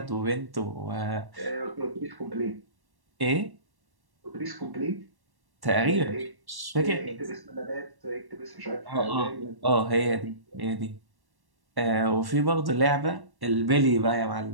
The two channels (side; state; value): left; late; 1.1 ms